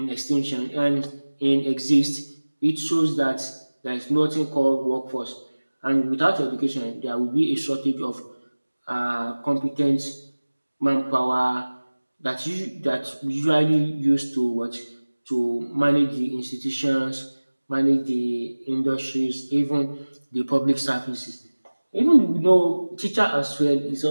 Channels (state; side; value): inverted; both; correlation -1.00